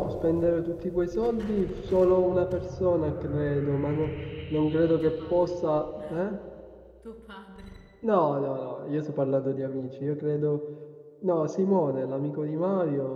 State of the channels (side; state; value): both; identical; correlation 1.00